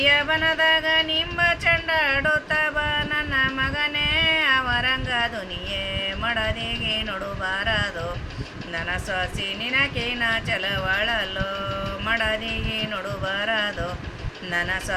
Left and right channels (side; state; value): both; identical; correlation 1.00